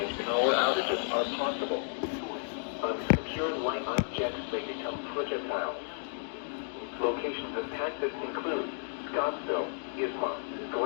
power outages are possible. Unsecured light objects may become projectiles. Locations impacted include Scottsville, Isma,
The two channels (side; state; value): right; silent; digital silence